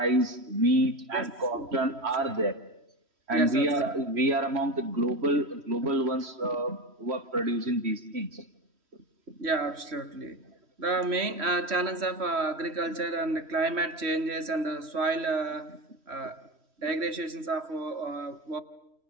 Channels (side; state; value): left; late; 3.1 ms